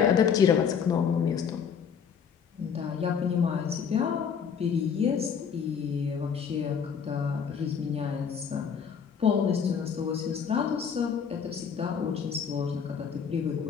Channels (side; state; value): right; quieter; 7.0 dB